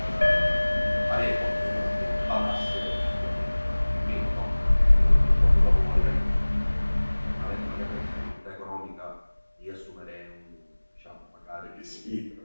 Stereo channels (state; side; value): inverted; both; correlation -1.00